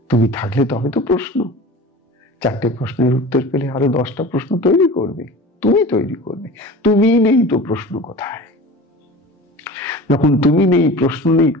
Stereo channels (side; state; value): both; normal; correlation 0.37